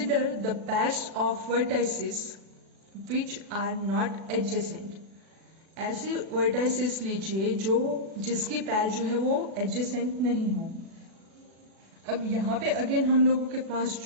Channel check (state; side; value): late; left; 36 ms